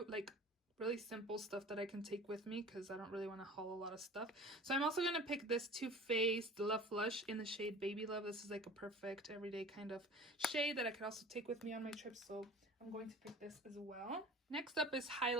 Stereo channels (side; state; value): both; normal; correlation 0.41